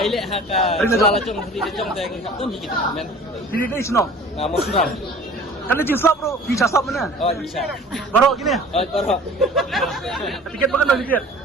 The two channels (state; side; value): normal; both; correlation 0.46